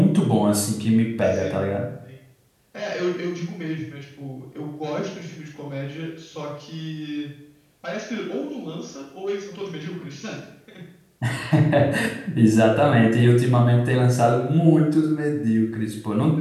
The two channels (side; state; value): both; identical; correlation 1.00